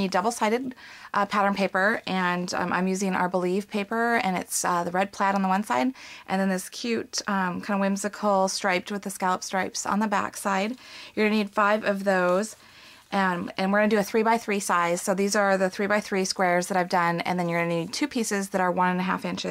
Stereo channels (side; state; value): both; identical; correlation 1.00